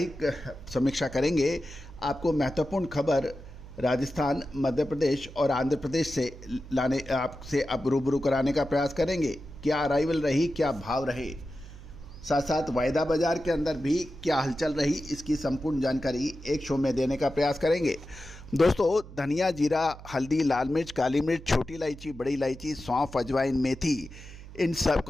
समीक्षा करेंगे। आपको महत्वपूर्ण खबर राजस्थान, मध्य प्रदेश और आंध्र प्रदेश से लाने आपसे अब रूबरू कराने का प्रयास करेंगे। क्या अराइवल रही, क्या भाव रहे, साथ साथ वायदा बाजार के अंदर भी क्या हलचल रही, इसकी संपूर्ण जानकारी एक शो में देने का प्रयास करेंगे। दोस्तों, धनिया, जीरा, हल्दी, लाल मिर्च, काली मिर्च, छोटी इलायची, बड़ी इलायची, सौंफ, अजवाइन, मेथी, इन सब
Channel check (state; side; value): noise; right; hum, 16 dB below the sound